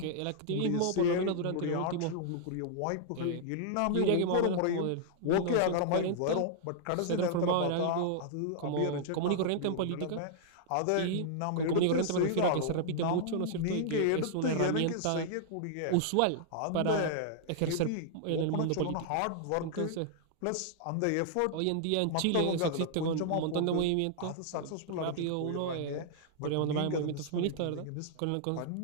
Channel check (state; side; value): different; both; correlation -0.01